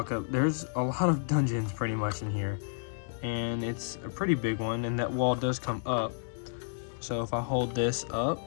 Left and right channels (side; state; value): right; silent; 57 dB below the other